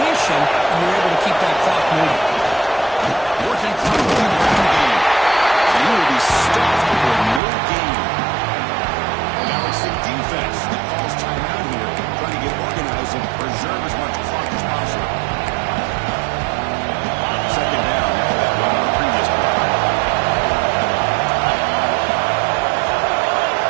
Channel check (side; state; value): left; drops out; at 7.4 s